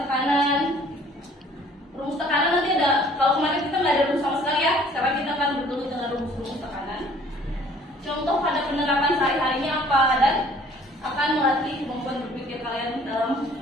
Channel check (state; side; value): normal; both; correlation 0.55